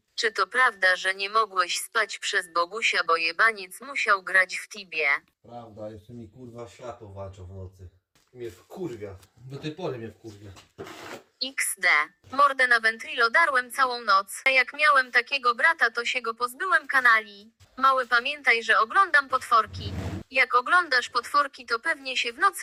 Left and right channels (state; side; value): identical; both; correlation 1.00